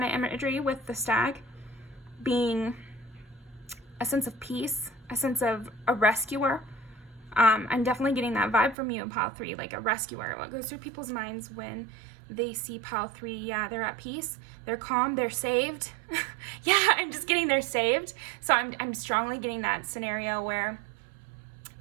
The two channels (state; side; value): drops out; left; at 8.8 s